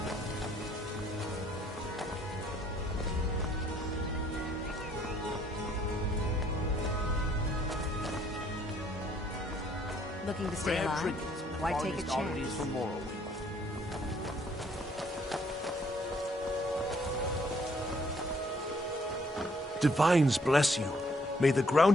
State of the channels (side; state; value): both; normal; correlation 0.65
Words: Looking to stay Rare alive? trinkets and Why take a finest oddities chance? from Morrowind. Divines bless you. May the